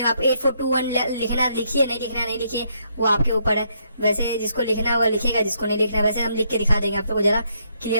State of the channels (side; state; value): both; inverted; correlation -0.74